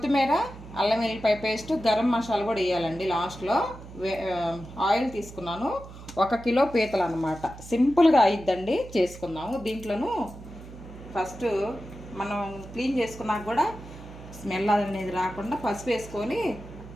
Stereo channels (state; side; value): noise; right; hum, 15 dB below the sound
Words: అల్లం వెల్లిపాయ పేస్ట్, గరం మసాలా కూడా వేయాలండి లాస్ట్లో. ఆయిల్ తీసుకున్నాను. 1 కిలో పీతలు అనమాట. సింపుల్గా అయిద్దండి, చేసుకుందాము. దీంట్లోనూ ఫస్ట్ మనం క్లీన్ చేసుకున్నాక కూడా స్మెల్ అనేది రాకుండా పసుపు వేసుకొని,